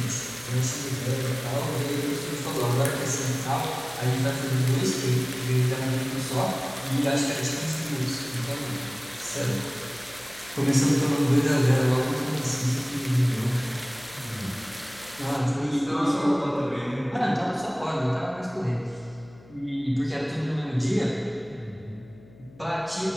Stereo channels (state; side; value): noise; left; hum, 23 dB below the sound